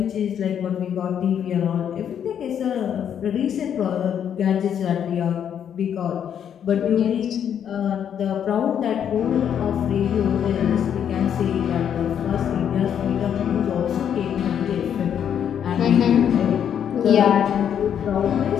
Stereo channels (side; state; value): right; quieter; 8.8 dB